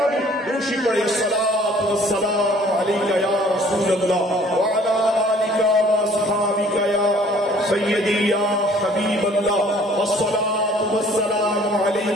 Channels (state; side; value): normal; both; correlation 0.55